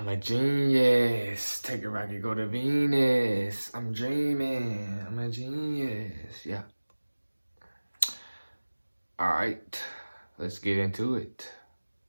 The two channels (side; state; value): both; inverted; correlation -1.00